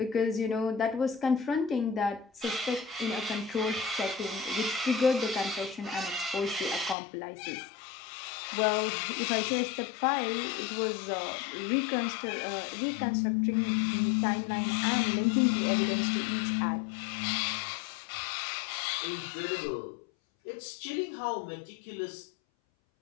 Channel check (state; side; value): drops out; right; at 7.0 s